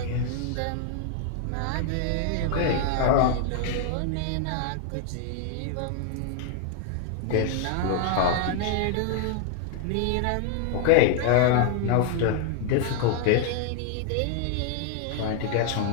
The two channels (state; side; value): different; both; correlation 0.00